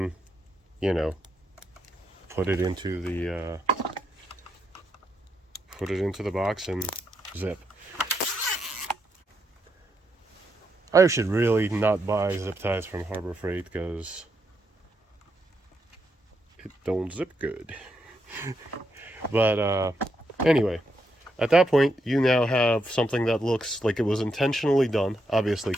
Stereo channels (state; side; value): normal; both; correlation 0.80